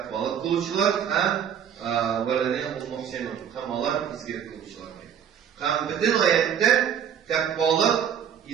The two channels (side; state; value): left; quieter; 8.6 dB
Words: kılıcılar hem vellezine hum muhsinun. Hem Allah izgilik kılıcılar diye. Hem bütün ayette takvalık